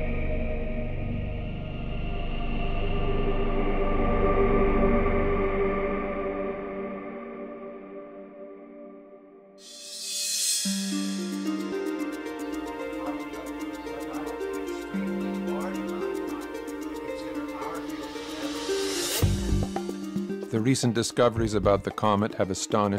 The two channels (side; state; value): both; identical; correlation 1.00